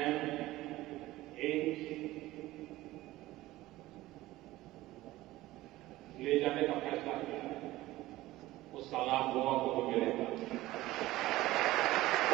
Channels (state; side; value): quieter; left; 17.3 dB